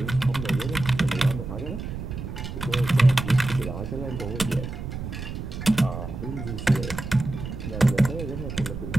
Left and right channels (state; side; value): noise; right; rumble, 7 dB below the sound